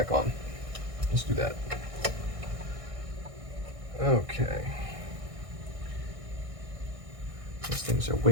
on. Let's do that. Okay. These things are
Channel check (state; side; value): late; left; 1.6 ms